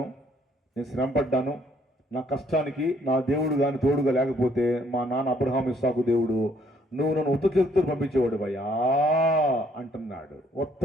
నేను శ్రమపడ్డాను, నా కష్టానికి నా దేవుడు కానీ తోడుగా లేకపోతే మా నాన్న అబ్రహాము, ఇస్సాకు దేవుడు నువ్వు నన్ను ఉత్త చేతులతో పంపించేవాడు భయ్యా అంటున్నాడు. ఉత్త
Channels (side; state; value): both; normal; correlation 0.66